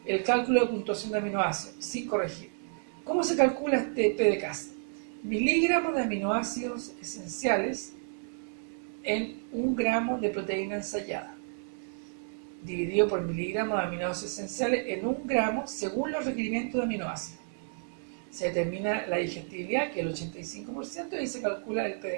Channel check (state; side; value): silent; left; 57 dB below the other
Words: el cálculo de puntuación de aminoácidos, sin corregir. ¿Cómo se calcula este PDCAAS? Miligramos de aminoácidos esenciales en 1 gramo de proteína ensayada, dividido por miligramos de aminoácidos esenciales en 1 gramo según los requerimientos de aminoácidos. Se determina la digestibilidad, que es el 85%, y se calcula el